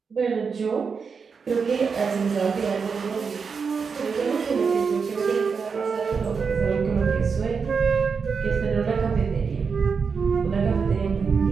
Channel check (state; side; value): quieter; left; 5.6 dB